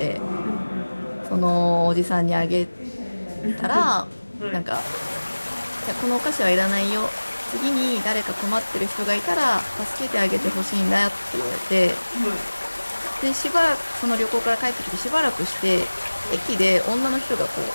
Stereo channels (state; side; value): inverted; both; correlation -1.00